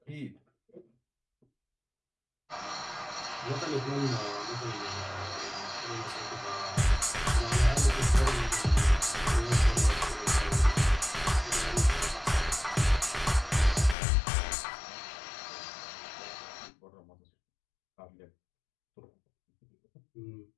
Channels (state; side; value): drops out; right; at 14.0 s